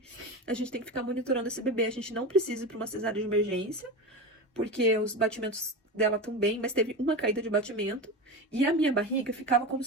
a gente tem que ficar monitorando esse bebê, a gente não precisa ir pra uma cesárea de emergência, porque os batimentos dela estão bem, mas teve uma caída de batimento, e a minha barriga ficava como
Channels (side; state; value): both; normal; correlation 0.24